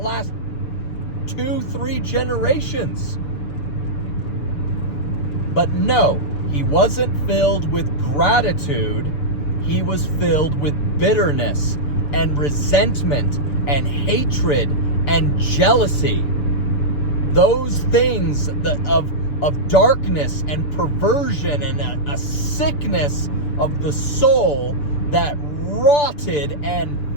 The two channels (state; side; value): late; right; 6.8 ms